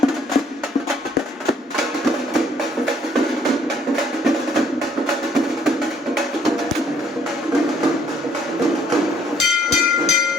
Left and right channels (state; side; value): normal; both; correlation 0.63